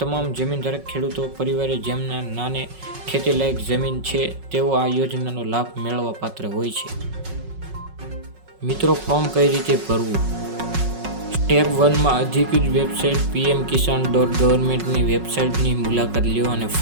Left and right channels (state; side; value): late; left; 5.4 ms